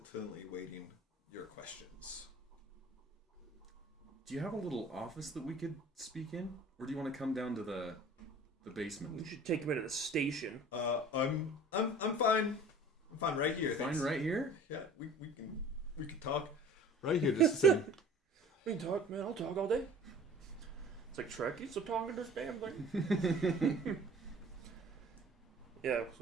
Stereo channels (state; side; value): normal; both; correlation 0.46